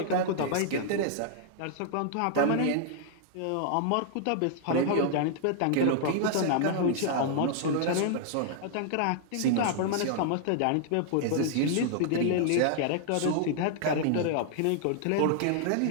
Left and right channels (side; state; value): both; different; correlation -0.01